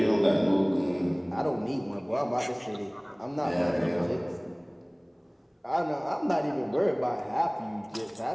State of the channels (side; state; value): both; identical; correlation 1.00